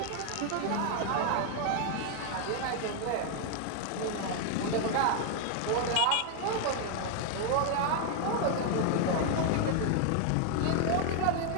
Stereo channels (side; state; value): both; different; correlation 0.00